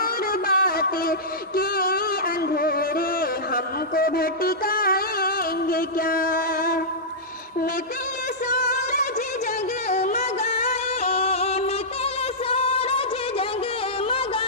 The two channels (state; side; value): normal; both; correlation -0.14